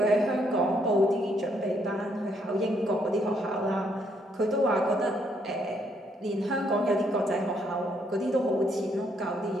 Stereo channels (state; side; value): normal; both; correlation 0.72